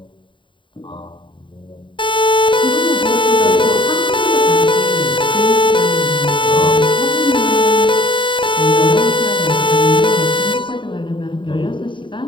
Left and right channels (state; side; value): late; right; 0.24 ms